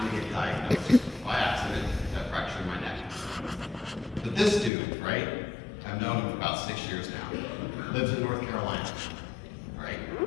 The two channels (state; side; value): drops out; right; at 4.7 s